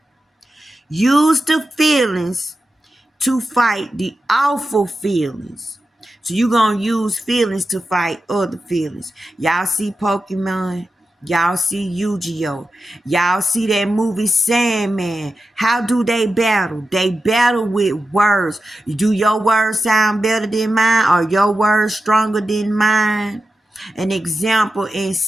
Use the feelings to fight the awful feelings. So you're going to use feelings to fight other feelings. Y'all see Pokemon? Y'all see Yu-Gi-Oh! Y'all see that movie Sandman. How do they battle? They battle with words. Do your words sound better than mine? Are your words stronger than mine? An example in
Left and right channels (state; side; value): normal; both; correlation 0.91